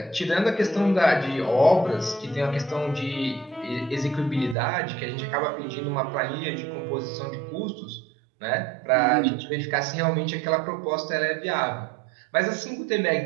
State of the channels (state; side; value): drops out; left; at 4.5 s